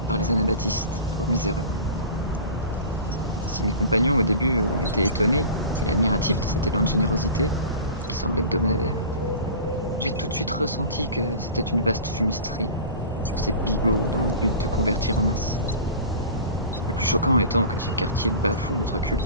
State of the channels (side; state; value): both; inverted; correlation -0.36